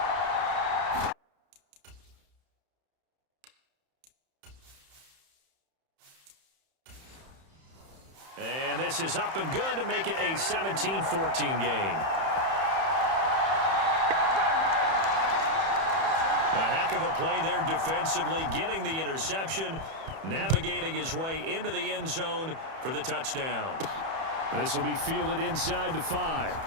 And this is up and good to make it a 17-14 game. A heck of a play there defensively, getting the interception, navigating his way into the end zone for the touchdown. This will be fielded inside the 5.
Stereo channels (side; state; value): left; late; 31 ms